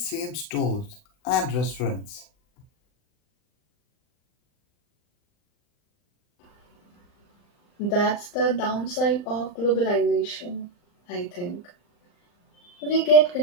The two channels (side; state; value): right; late; 40 ms